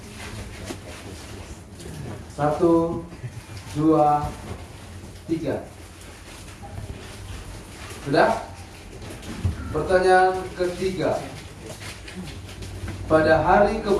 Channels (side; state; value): both; identical; correlation 1.00